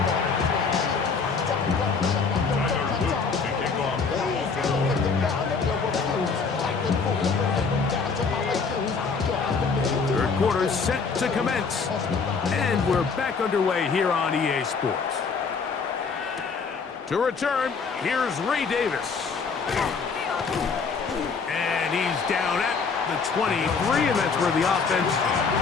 Third quarter set to commence. And we're back underway here on EA Sports. To return, here's Ray Davis. And he's down at the 23, and that's where the offense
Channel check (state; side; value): quieter; right; 5.1 dB